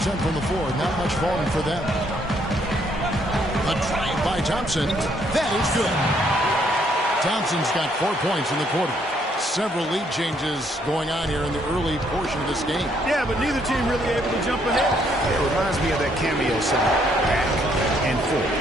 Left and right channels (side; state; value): both; normal; correlation 0.69